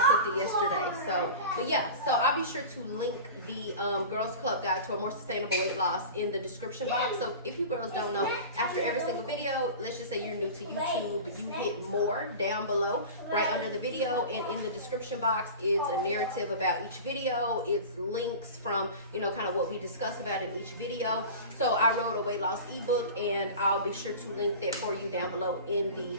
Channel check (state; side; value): inverted; both; correlation -0.34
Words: it yesterday. So, but yeah, so I'll be sure to link the Girls Club guide to a more sustainable weight loss in the description box. So if you girls don't know, after every single video, let's just say you're new to YouTube, you hit more down below, right under the video, and in the description box, it's a narrative about each video. It's links from, you know, kind of what we discuss about in each video. So I wrote a weight loss ebook, and I'll be sure to link that for you down below in the